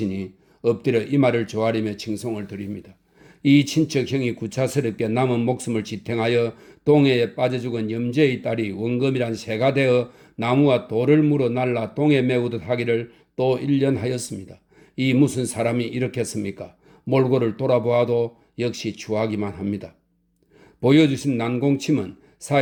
엎드려 이 말을 조아리며 칭송을 드립니다. 이 친척형이 구차스럽게 남은 목숨을 지탱하여 동해에 빠져 죽은 염제의 딸이 원금이란 새가 되어 나무와 돌을 물어 날라 동해 메우듯 하기를 또 1년 하였습니다. 이 무슨 사람이 이렇겠습니까? 몰골을 돌아보아도 역시 추하기만 합니다. 보여주신 난공침은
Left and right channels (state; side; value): identical; both; correlation 1.00